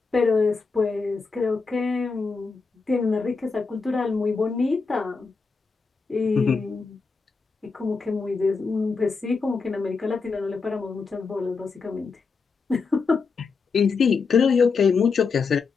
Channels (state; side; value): quieter; right; 4.8 dB